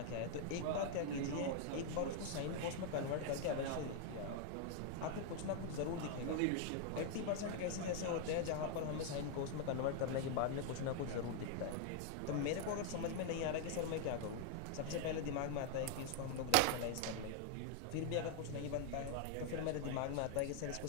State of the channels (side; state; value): both; different; correlation 0.00